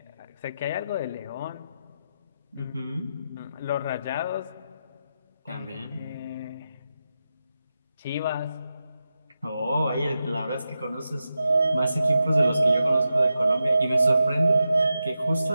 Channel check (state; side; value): inverted; both; correlation -0.89